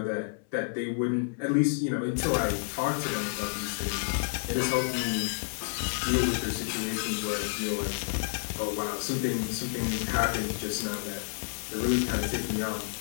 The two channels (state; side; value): silent; right; 58 dB below the other